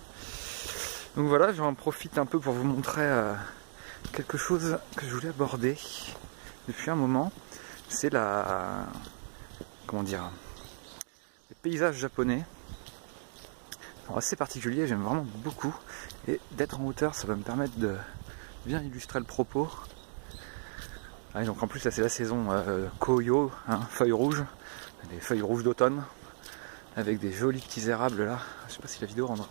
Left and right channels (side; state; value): left; silent; digital silence